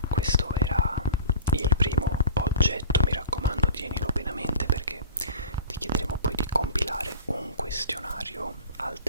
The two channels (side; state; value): both; inverted; correlation -0.39